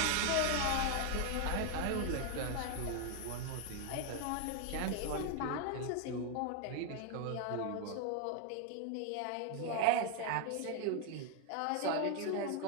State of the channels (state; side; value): different; both; correlation 0.01